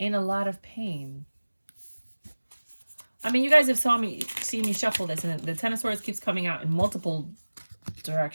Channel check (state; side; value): inverted; both; correlation -1.00